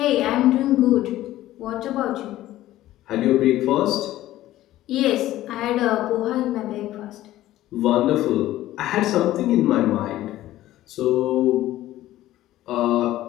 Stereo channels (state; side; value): quieter; right; 14.8 dB